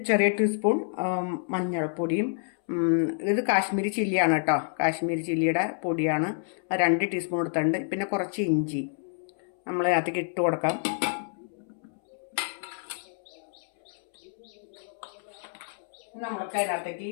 ചെറിയ ടീസ്പൂൺ മഞ്ഞൾപ്പൊടിയും, ഇത് കാശ്മീരി ചില്ലിയാണ് കേട്ടോ, കാശ്മീരി ചില്ലിയുടെ പൊടിയാണ്, 2 ടീസ്പൂൺ എടുത്തിട്ടുണ്ട്. പിന്നെ കുറച്ച് ഇഞ്ചി നമ്മൾ അതിലേക്ക് ഇട്ട് കൊടുക്കാം. നമ്മൾക്ക് അതിനകത്തേക്ക്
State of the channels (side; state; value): right; silent; 59 dB below the other